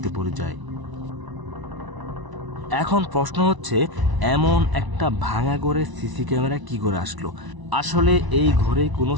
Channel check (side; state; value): left; late; 1.0 ms